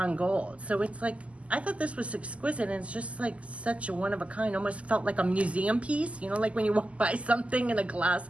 gold. So it's like, I thought this was exquisite, and it's just like such a one of a kind. Almost felt like a museum piece, you know, like when you walk by something in a glass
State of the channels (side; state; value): left; late; 0.064 ms